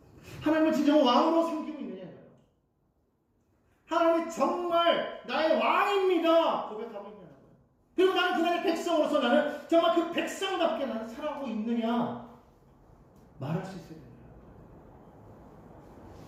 하나님을 진정 왕으로 섬기고 있느냐고요. 하나님이 정말 나의 왕입니다 고백하고 있냐는 거예요. 그리고 나는 그날의 백성으로서 나는 정말 그 백성답게 나는 살아가고 있느냐 말할 수 있어야 된다.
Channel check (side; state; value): both; identical; correlation 1.00